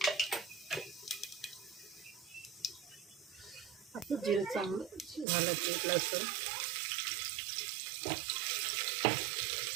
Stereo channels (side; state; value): left; drops out; at 5.2 s